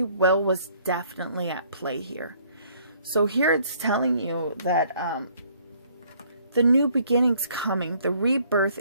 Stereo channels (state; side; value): inverted; both; correlation -0.62